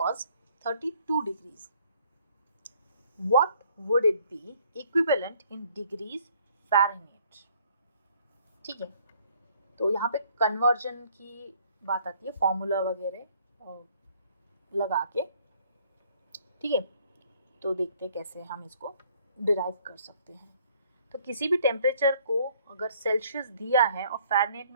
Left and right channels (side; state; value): both; inverted; correlation -0.61